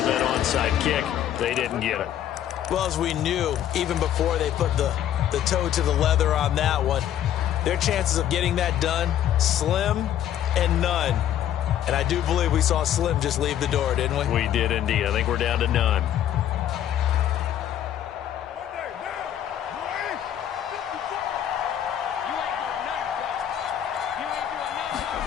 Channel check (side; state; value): right; quieter; 10.8 dB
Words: that onside kick. They didn't get it. Well, as we knew, even before they put the toe to the leather on that one, their chances of getting that done, slim and none. And I do believe we saw Slim just leave the door, didn't we? We did indeed. I think we're down to none.